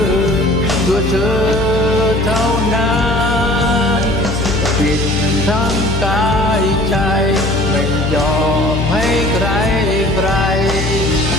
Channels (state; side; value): noise; left; hum, 3 dB below the sound